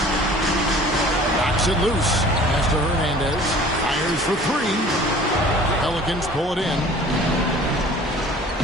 Knocks it loose. Pass to Hernandez. Fires for 3. Pelicans pull it in.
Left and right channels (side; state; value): both; normal; correlation 0.47